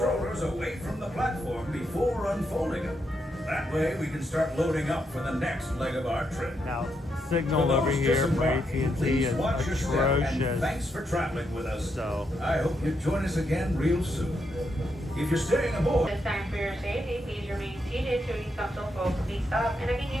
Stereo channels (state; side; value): normal; both; correlation 0.80